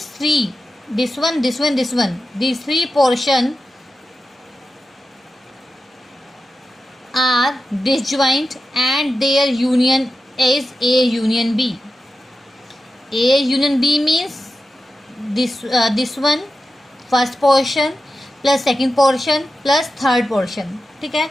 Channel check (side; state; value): both; normal; correlation 0.92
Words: three, this one, these three portion are disjoint and their union is A union B. A union B means this one, first portion plus second portion plus third portion. ठीक है,